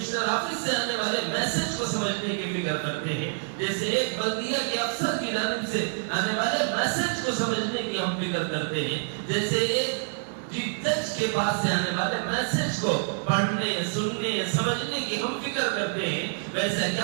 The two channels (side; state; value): left; silent; 60 dB below the other